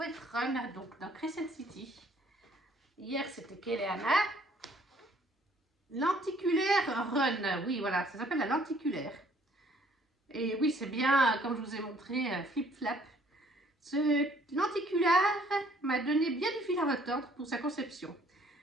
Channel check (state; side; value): normal; both; correlation 0.60